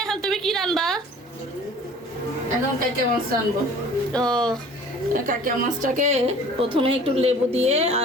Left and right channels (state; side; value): normal; both; correlation 0.47